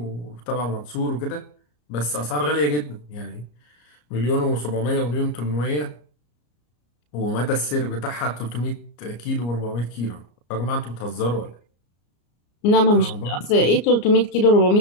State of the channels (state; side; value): late; right; 34 ms